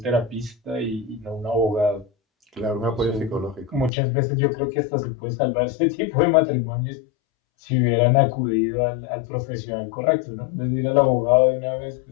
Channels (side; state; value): right; drops out; at 3.9 s